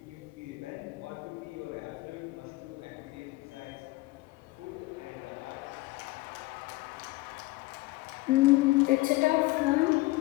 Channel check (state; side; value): quieter; right; 20.8 dB